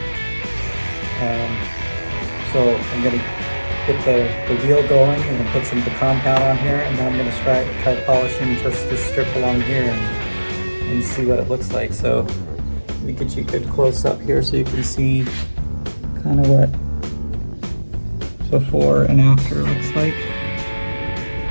So I'm going to get the wheel going and then put some of the compound on here, and then I'm going to try polishing just this strip along here and see what it looks like. So let me get you a good close up here so you can see kind of what before and after looks like.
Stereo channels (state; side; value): inverted; both; correlation -1.00